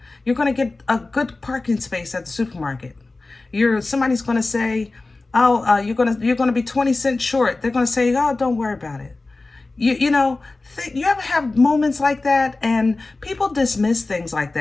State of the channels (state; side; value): quieter; right; 3.3 dB